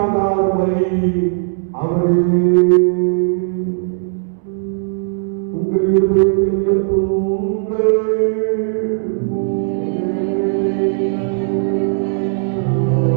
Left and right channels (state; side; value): silent; left; 68 dB below the other